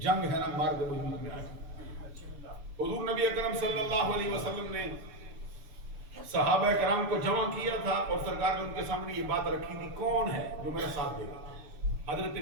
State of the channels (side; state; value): left; late; 6.9 ms